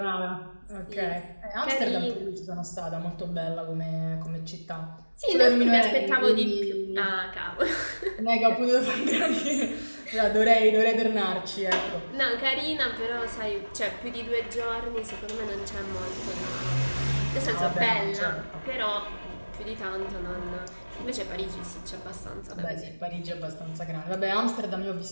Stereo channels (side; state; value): both; inverted; correlation -1.00